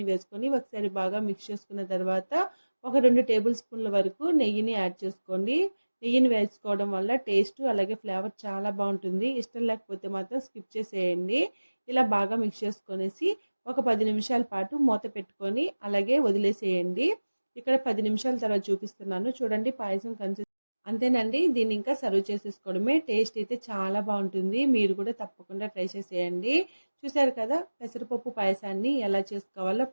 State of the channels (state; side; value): inverted; both; correlation -1.00